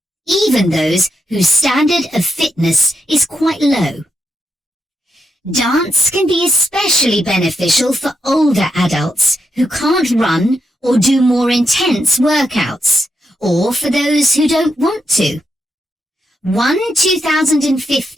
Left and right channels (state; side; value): normal; both; correlation 0.82